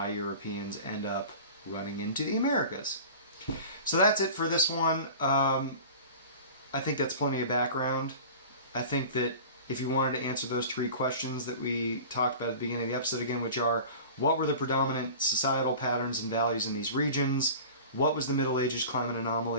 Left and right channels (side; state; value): both; inverted; correlation -0.38